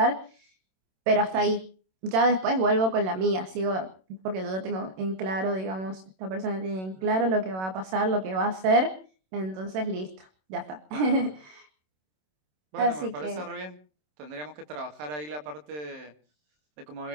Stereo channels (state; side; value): late; left; 27 ms